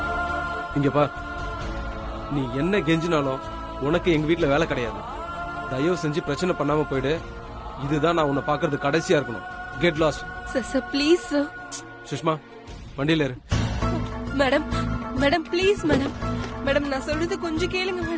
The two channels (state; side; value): identical; both; correlation 1.00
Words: இங்க பா, நீ என்ன கெஞ்சினாலும் உனக்கு எங்க வீட்டுல வேலை கிடையாது. தயவு செஞ்சு பிரச்சனை பண்ணாம போயிடு. இதுதான் நான் உன்னை பாக்குறது கடைசியா இருக்கணும். Get lost. Sir sir please sir. Sushma, வண்டியில இரு. Madam madam please madam. Madam நான் சொல்றது கொஞ்சம் கேளுங்க